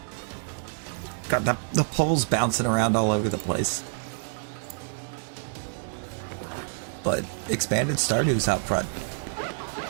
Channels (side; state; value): left; silent; digital silence